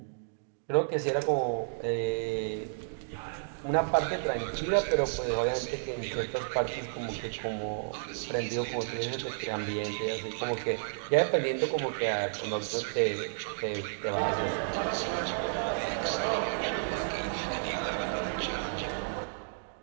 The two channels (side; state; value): left; silent; digital silence